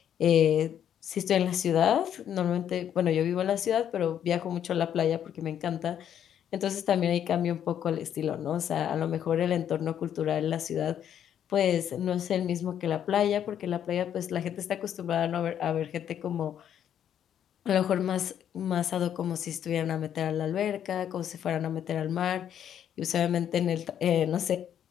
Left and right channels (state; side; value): quieter; right; 9.6 dB